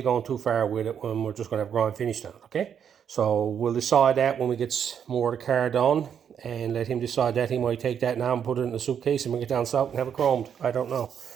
too far with it when we're just going to have grind finish on it, okay? So we'll decide that when we get more of the car done. And let him decide that. He might take that now and put it in the suitcase and bring it down south and have it chromed. I don't know.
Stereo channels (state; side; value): quieter; left; 8.2 dB